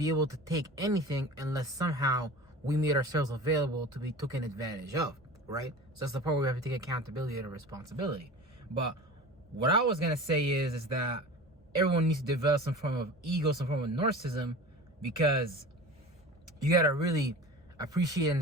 able to take anything unless somehow we made ourselves available to be taken advantage of, right? So that's the part where we have to take accountability and responsibility. But what I was gonna say is that everyone needs to develop some form of ego, some form of narcissism, because you gotta really appreciate and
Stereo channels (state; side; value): normal; both; correlation 0.36